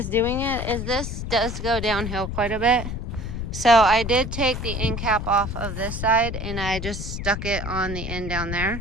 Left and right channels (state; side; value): noise; left; rumble, 5 dB below the sound